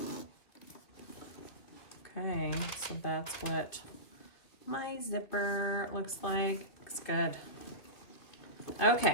Okay, so that's what my zipper looks like. Looks good.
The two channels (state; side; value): late; right; 2.7 ms